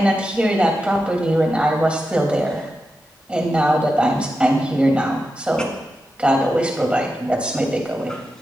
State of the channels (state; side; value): normal; both; correlation 0.89